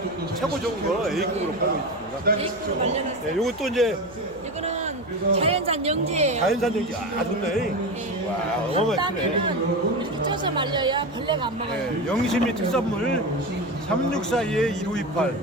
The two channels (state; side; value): noise; right; hum, 23 dB below the sound